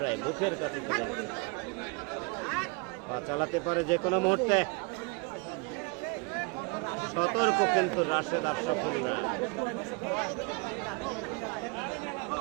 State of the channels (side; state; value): left; quieter; 29.4 dB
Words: মুখের কাছে চলে গেছে। পা চালাতে পারে যে কোনো মুহূর্তে। সতর্ক কিন্তু রাশেদ আর সফল না।